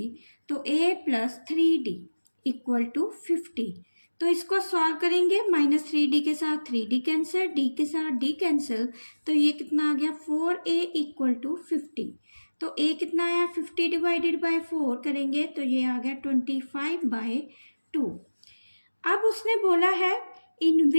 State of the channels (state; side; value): inverted; both; correlation -1.00